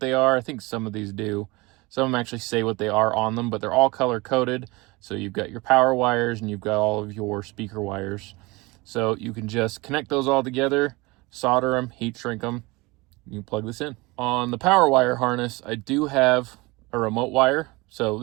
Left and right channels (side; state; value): left; quieter; 23.7 dB